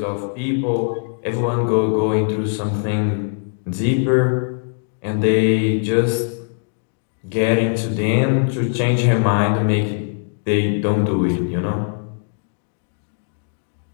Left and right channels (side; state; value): right; silent; digital silence